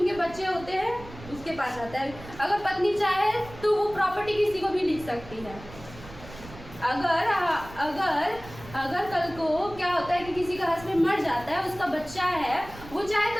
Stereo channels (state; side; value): noise; right; rumble, 16 dB below the sound